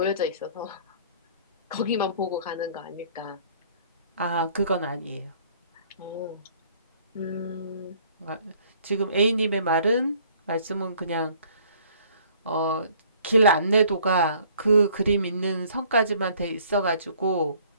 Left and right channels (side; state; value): both; inverted; correlation -0.57